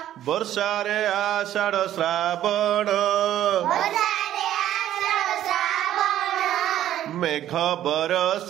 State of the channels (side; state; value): left; quieter; 12.2 dB